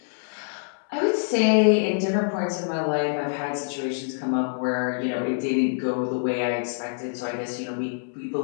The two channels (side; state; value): right; silent; 61 dB below the other